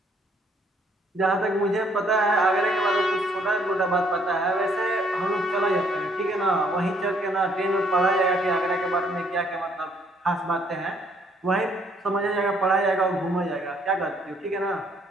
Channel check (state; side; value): normal; both; correlation 0.65